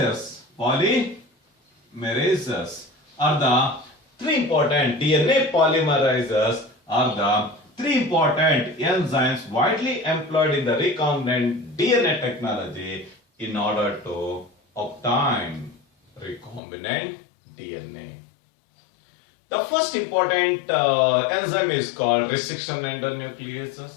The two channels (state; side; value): drops out; right; at 16.6 s